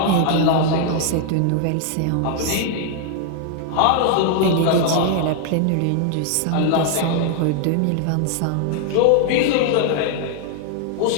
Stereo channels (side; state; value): both; different; correlation 0.00